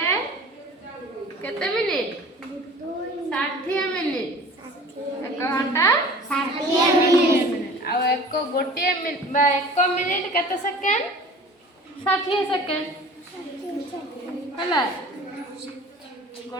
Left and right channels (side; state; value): both; normal; correlation 0.43